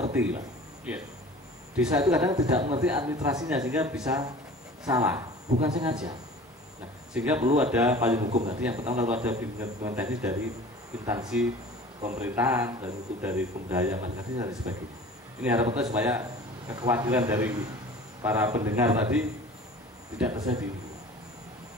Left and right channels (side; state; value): both; normal; correlation 0.42